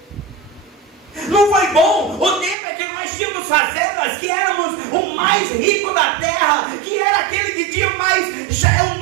Não foi bom o tempo em que nós tínhamos fazendas, que éramos o mais rico da terra, que era aquele que tinha mais, já é o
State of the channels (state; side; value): drops out; left; at 2.6 s